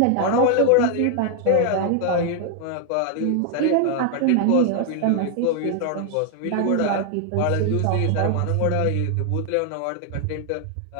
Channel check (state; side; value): different; both; correlation 0.00